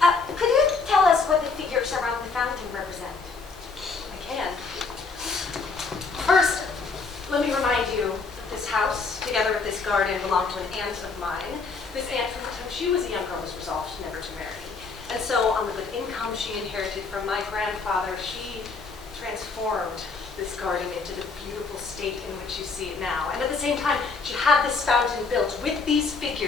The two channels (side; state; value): right; quieter; 4.5 dB